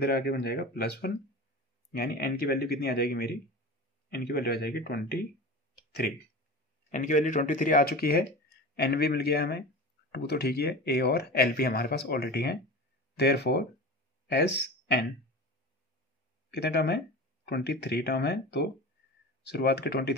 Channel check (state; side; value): normal; both; correlation 0.31